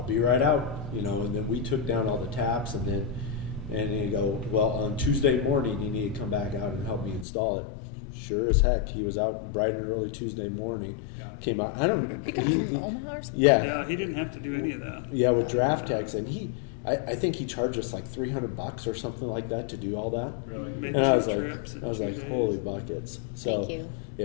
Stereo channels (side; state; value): right; drops out; at 7.2 s